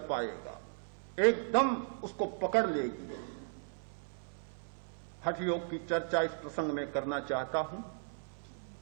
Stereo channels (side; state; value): left; silent; 54 dB below the other